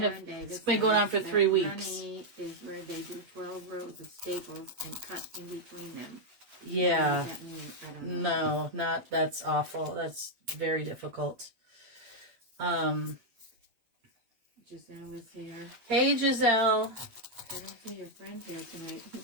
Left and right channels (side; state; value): left; late; 8.8 ms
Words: on for 3 weeks. Honey is where they do 12 rows of staples and cut in between them. Yeah. What does that mean? I don't know. No, that's awful. That's very difficult. Giselle is here. Hey, Giselle. I don't see your friend here tonight,